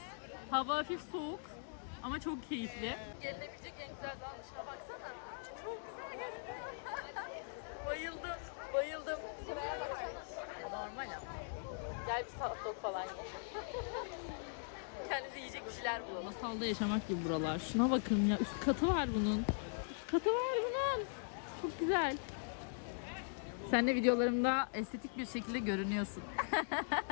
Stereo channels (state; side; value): silent; right; digital silence